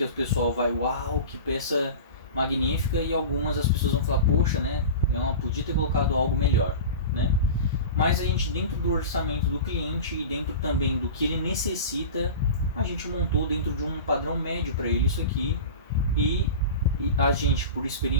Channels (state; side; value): inverted; both; correlation -0.32